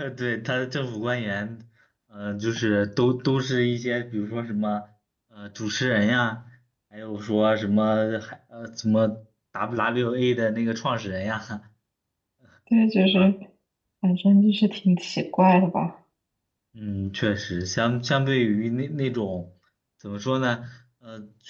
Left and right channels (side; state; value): both; identical; correlation 1.00